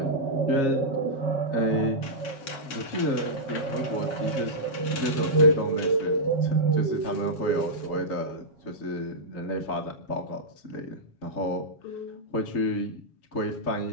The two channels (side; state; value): right; late; 7.3 ms